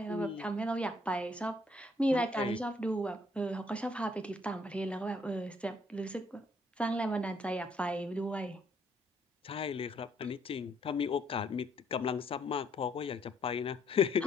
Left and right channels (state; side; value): normal; both; correlation 0.67